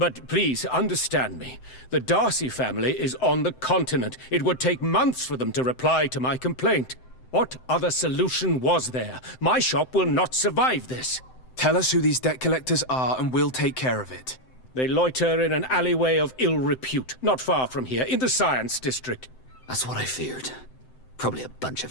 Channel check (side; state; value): right; late; 7.8 ms